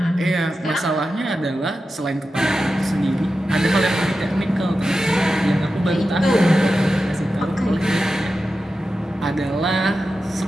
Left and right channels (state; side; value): normal; both; correlation 0.92